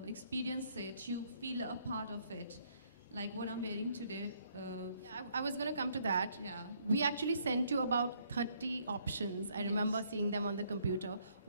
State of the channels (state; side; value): inverted; both; correlation -0.68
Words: experience it, you feel a part of it. Like what I'm wearing today. Yeah, I was going to come to that. Yeah. We actually sent you about 30 options. I remember seeing them on the computer.